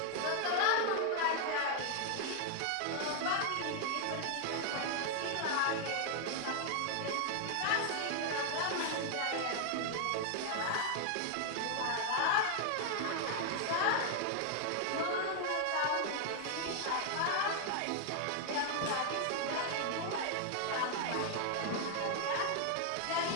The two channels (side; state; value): both; different; correlation 0.00